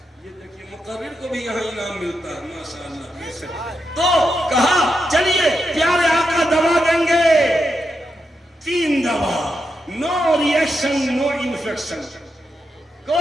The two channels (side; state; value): both; normal; correlation 0.85